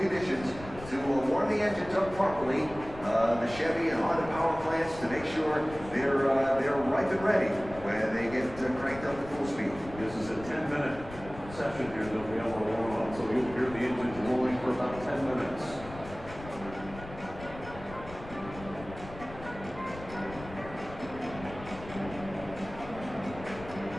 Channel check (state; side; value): noise; left; rumble, 15 dB below the sound